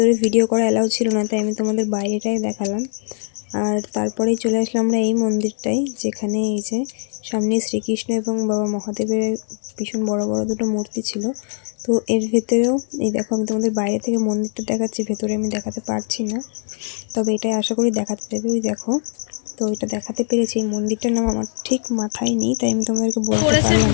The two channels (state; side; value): silent; right; 65 dB below the other